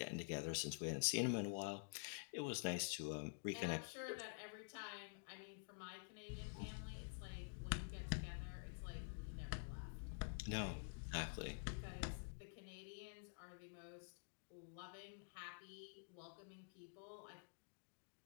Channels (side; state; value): right; silent; digital silence